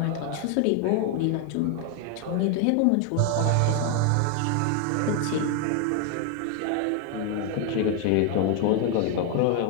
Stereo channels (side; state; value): both; different; correlation 0.01